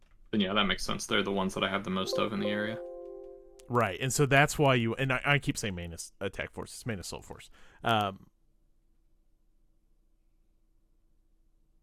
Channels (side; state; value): both; identical; correlation 1.00